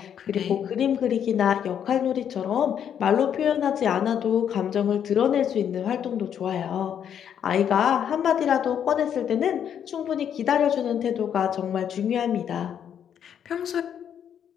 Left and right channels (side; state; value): right; quieter; 8.8 dB